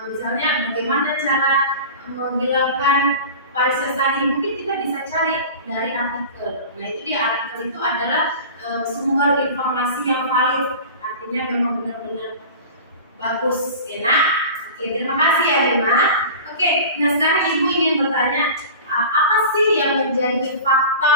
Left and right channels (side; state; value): both; inverted; correlation -0.36